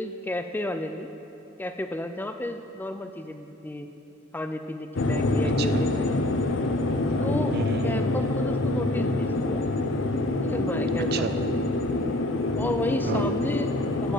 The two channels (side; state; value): both; normal; correlation 0.52